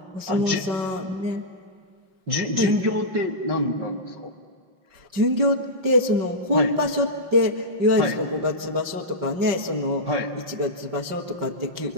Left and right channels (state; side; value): late; left; 5.2 ms